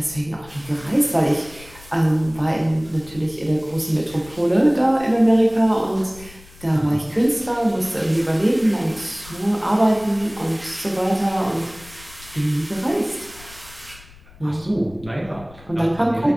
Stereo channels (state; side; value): noise; left; rumble, 21 dB below the sound